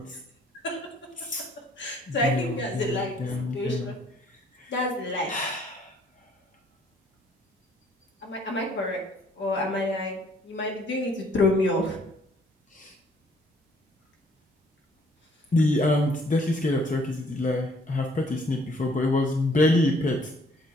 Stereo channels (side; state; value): both; normal; correlation 0.61